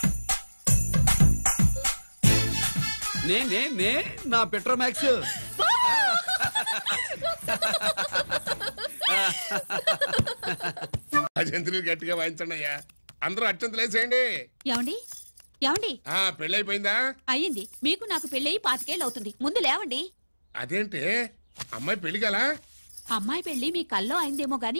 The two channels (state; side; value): inverted; both; correlation -1.00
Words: నే నా పెట్రోమాక్స్. అజంతులు గట్టిగా వాయించండి అయ్యా. అందరూ అత్యంతలు వేసేయండి. ఏమండి ఏమండి? పెళ్ళైపోయిందా? అయ్యింది. మీకు నాకు పెళ్ళయి 5 ఏళ్ళు అవుతుంది. ముందు లేవండి. అదేంటి అమ్మాయి పెళ్లి గల? అమ్మాయి పెళ్లి మీ కల్లో అయిందేమో